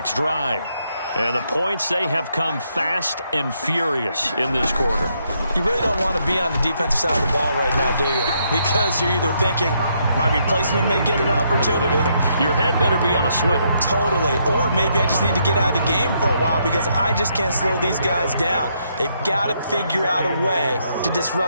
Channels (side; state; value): both; inverted; correlation -0.75